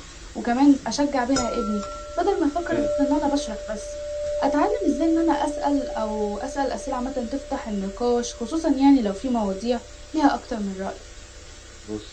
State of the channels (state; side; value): identical; both; correlation 1.00